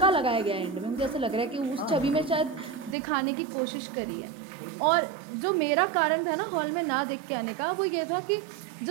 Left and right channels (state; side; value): drops out; left; at 3.0 s